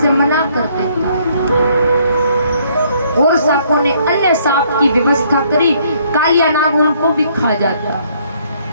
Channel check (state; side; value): inverted; both; correlation -0.66